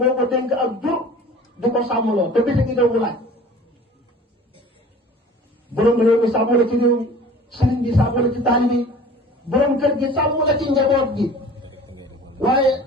ko dénk ak jur di ko sàmmloo te bés gi mu laaj borom réew mi sàmm la ci réew mi sëriñ bi sàmm la ci taalibe yi borom kër gi sàmm la ci njaboot gi waaye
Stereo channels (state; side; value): normal; both; correlation 0.44